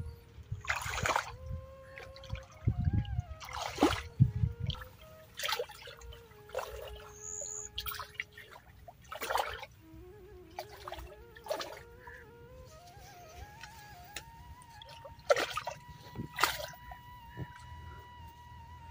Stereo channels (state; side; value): identical; both; correlation 1.00